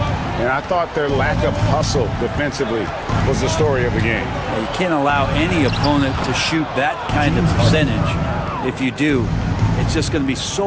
and I thought their lack of hustle defensively was the story of the game. You can't allow any opponent to shoot that kind of percentage. If you do, it's just going to be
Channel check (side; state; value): both; identical; correlation 1.00